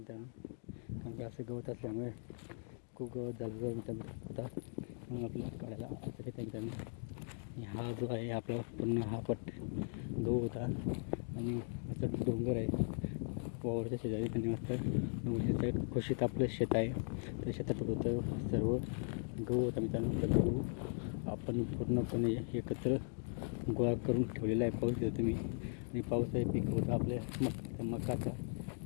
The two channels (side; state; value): right; silent; 52 dB below the other